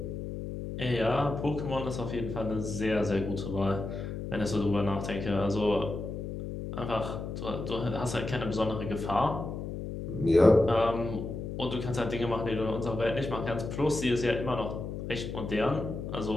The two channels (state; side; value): noise; left; hum, 6 dB below the sound